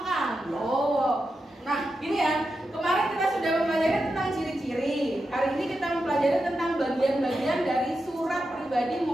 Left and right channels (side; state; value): both; normal; correlation 0.89